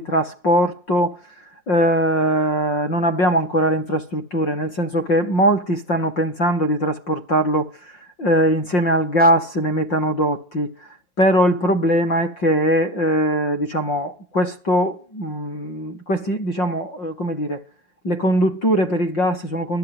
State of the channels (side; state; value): right; late; 5.6 ms